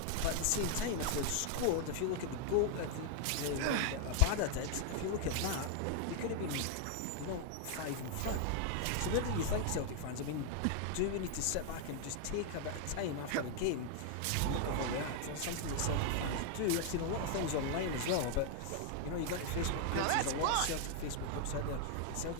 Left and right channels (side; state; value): both; different; correlation 0.00